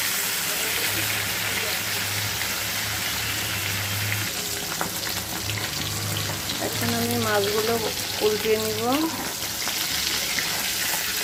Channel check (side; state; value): both; identical; correlation 1.00